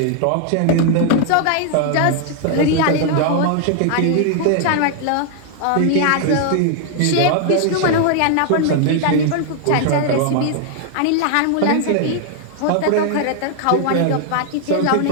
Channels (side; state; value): both; different; correlation 0.00